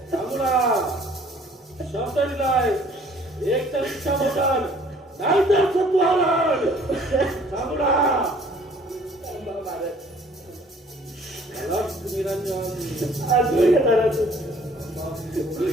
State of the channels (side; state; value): both; normal; correlation 0.56